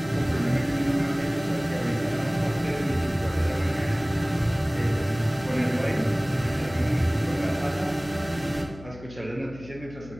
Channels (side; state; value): left; noise; hum, 17 dB below the sound